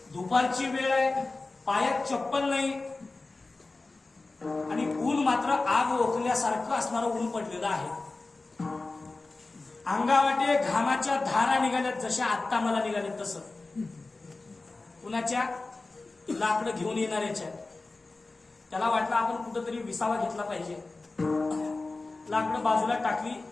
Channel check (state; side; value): quieter; right; 3.4 dB